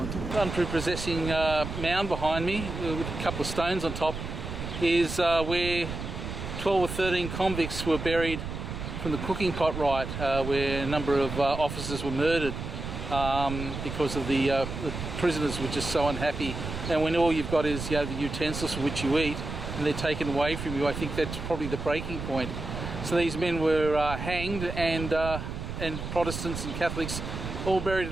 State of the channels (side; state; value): right; noise; rumble, 6 dB below the sound